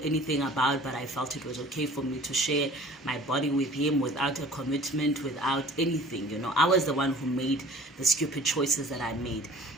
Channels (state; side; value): normal; both; correlation 0.46